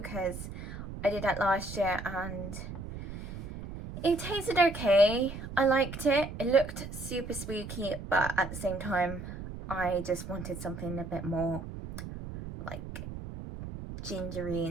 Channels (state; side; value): noise; right; rumble, 9 dB below the sound